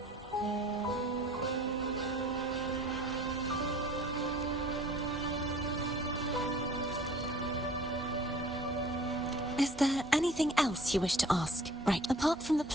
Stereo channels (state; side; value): normal; both; correlation 0.49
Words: Is there anything else you wish to ask? Right. Apart from the